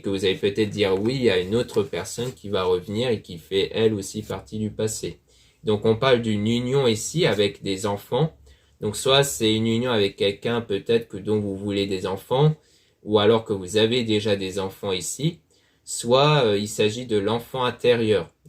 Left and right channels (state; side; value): identical; both; correlation 1.00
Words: que vous allez peut-être dire oui à une autre personne qui va revenir et qui fait elle aussi partie du passé. Donc on parle d'une union ici avec des enfants. Donc soit c'est une union avec quelqu'un peut-être que dont vous voulez des enfants, ou alors que vous avez déjà des enfants ici, soit il s'agit de l'enfant intérieur.